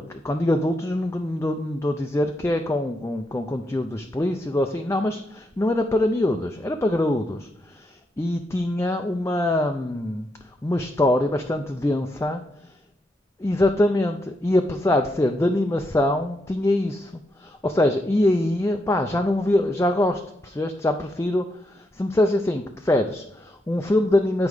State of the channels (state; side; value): normal; both; correlation 0.81